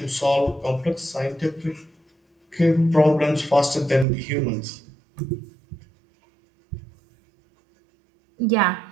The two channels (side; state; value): left; drops out; at 4.0 s